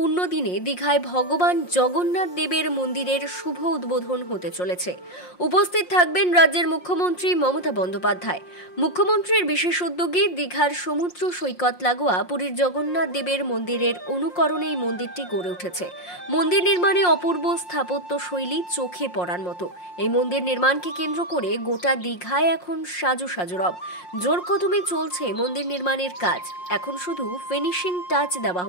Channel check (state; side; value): late; right; 5.6 ms